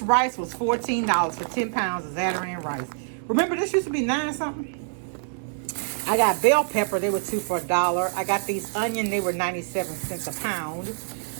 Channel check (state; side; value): silent; left; digital silence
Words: rice was $14 for 10 pounds of Zatarain rice. Remember, this used to be 9 something? I got bell pepper. They were 2 for $1. I got these onion. They were 97 cents a pound.